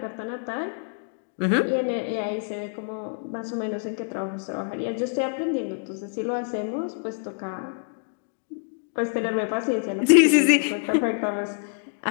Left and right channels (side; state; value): right; silent; digital silence